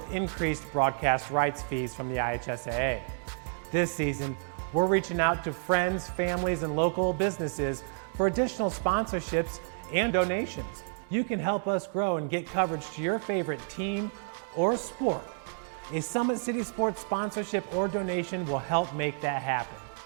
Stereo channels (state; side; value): silent; left; digital silence